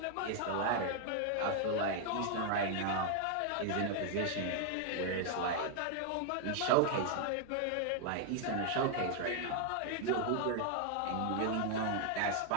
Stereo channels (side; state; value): both; different; correlation 0.00